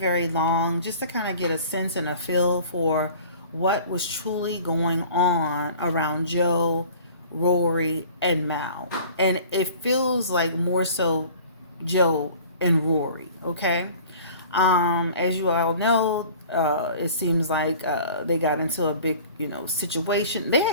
long, just to kind of get a sense and a feel for what was truly going on around Joe, Rory, and Mal. And it feels like more so Joe and Rory, okay? As you all know, it seems like they got into a big, situation. They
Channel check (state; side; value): inverted; both; correlation -0.46